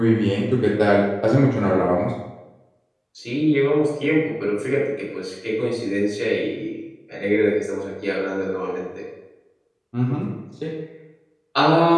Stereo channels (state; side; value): identical; both; correlation 1.00